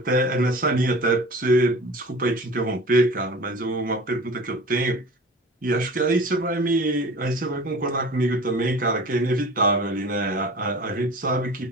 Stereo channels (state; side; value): normal; both; correlation 0.40